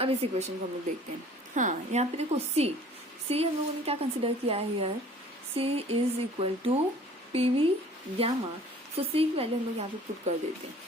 इस इक्वेशन को हम लोग देखते हैं. हाँ, यहाँ पे देखो C हम लोगों ने क्या कंसिडर किया है here, C is equal to PV gamma. सो C की वैल्यू हम लोग यहाँ पे पुट कर देते हैं.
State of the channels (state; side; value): normal; both; correlation 0.50